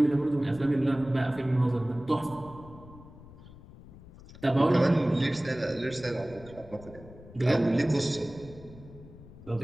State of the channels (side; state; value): left; noise; rumble, 19 dB below the sound